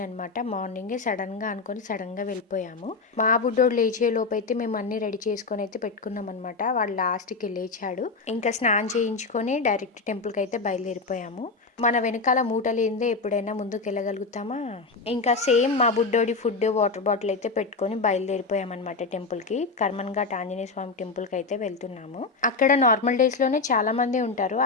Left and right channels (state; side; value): quieter; right; 4.1 dB